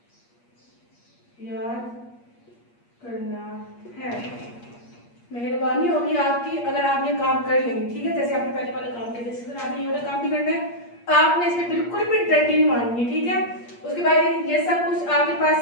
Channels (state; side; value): late; right; 8.5 ms